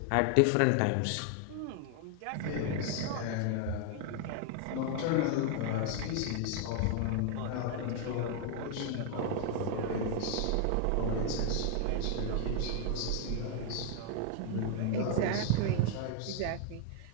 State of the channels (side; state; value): both; different; correlation 0.00